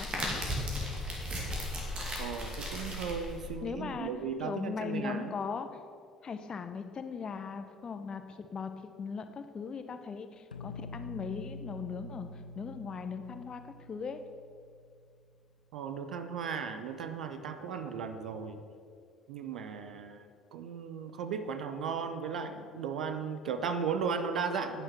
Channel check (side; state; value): both; normal; correlation 0.42